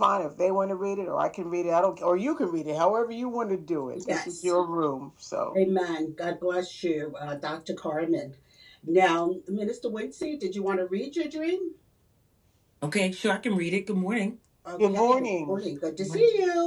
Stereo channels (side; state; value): both; identical; correlation 1.00